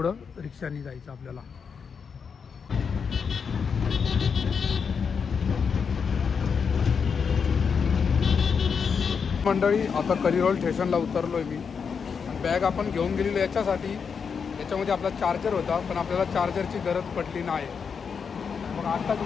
रिक्षाने जायचं आपल्याला. मंडळी आता कलिरोल स्टेशनला उतरलो आहे मी. बॅग आपण घेऊन गेलेलो याच्यासाठी, याच्यामध्ये आपला चार्जर होता पण आपल्याला चार्जरची गरज पडली नाही. मग आत्ताच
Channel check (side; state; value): right; quieter; 6.2 dB